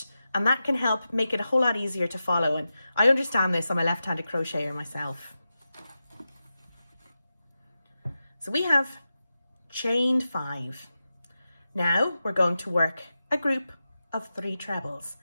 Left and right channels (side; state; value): both; inverted; correlation -0.92